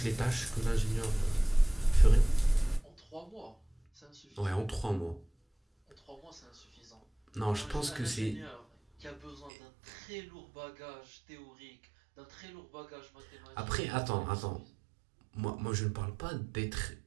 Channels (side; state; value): left; drops out; at 9.5 s